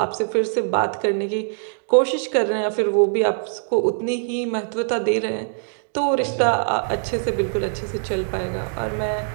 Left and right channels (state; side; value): silent; left; digital silence